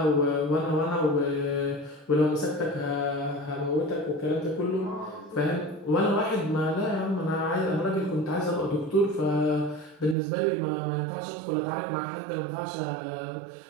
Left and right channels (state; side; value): drops out; left; at 10.2 s